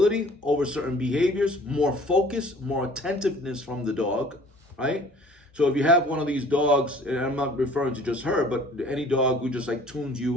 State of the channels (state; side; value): normal; both; correlation 0.51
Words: over certain behaviors, more focus, more attentiveness from the dog, right? So if you have one of these dogs, and I'm not referring to just her, but any dog who just like tunes